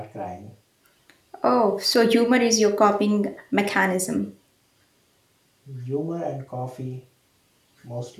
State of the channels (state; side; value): identical; both; correlation 1.00